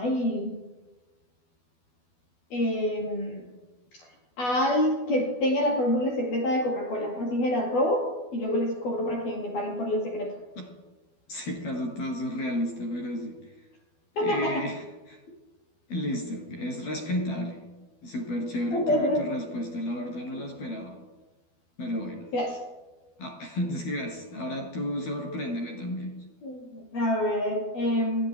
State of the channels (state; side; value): late; right; 12 ms